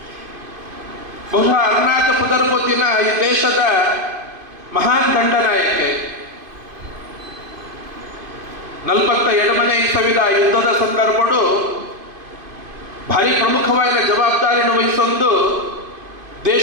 ಬಹುಶಃ ಅರುಣಾಚ ಪುದರ್ಪೊತ್ತಿನ ಈ ದೇಶದ ಮಹಾನ್ ದಂಡನಾಯಕೆ 47ನೇ ಇಸವಿದ ಯುದ್ಧದ ಸಂದರ್ಭಡು ಭಾರಿ ಪ್ರಮುಖವಾದ ಜವಾಬ್ದಾರಿಯನ್ನು ವಹಿಸೊಂದು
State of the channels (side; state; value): left; late; 2.5 ms